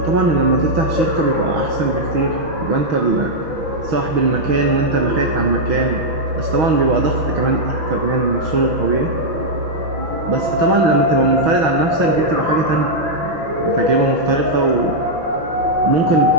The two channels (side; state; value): left; late; 6.2 ms